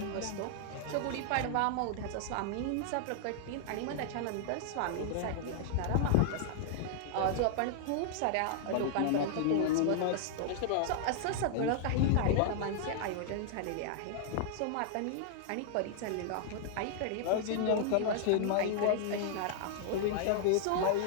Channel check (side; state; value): both; different; correlation -0.01